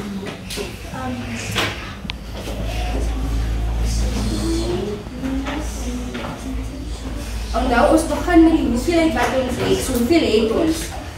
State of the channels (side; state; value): both; identical; correlation 1.00